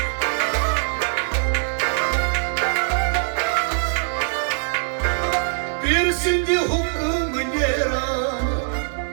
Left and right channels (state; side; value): silent; left; digital silence